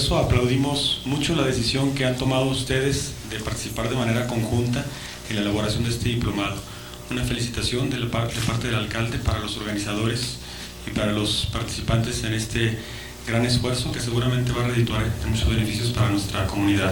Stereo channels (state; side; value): identical; both; correlation 1.00